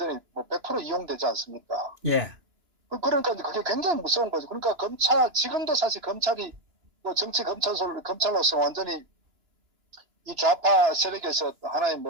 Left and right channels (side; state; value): left; late; 2.9 ms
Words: 뭐 100% 이용되지 않습니까? 예, 그러니까 그게 굉장히 무서운 거죠. 그러니까 지금도 사실 검찰이 뭐 정치 검찰로서 완전히 이 좌파 세력에서 하나의